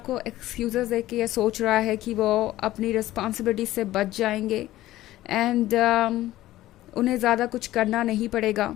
एक्सक्यूजेस दे के ये सोच रहा है कि वो अपनी रिस्पॉन्सिबिलिटी से बच जाएंगे, एंड उन्हें ज़्यादा कुछ करना नहीं पड़ेगा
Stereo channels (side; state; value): right; quieter; 15.4 dB